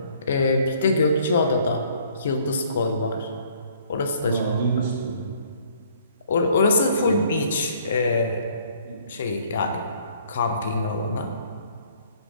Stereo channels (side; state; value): both; inverted; correlation -0.59